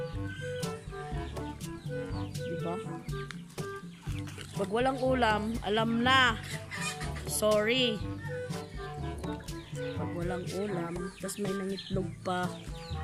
diba? Pag walang ulam, alam na. Sorry. Pag walang ulam, tas may nangitlog pa.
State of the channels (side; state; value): both; identical; correlation 1.00